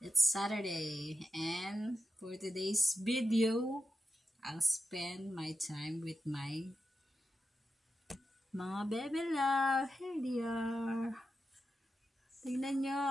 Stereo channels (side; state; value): both; normal; correlation 0.89